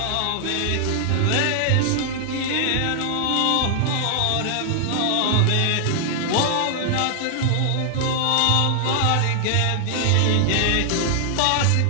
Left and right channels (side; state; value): both; different; correlation 0.00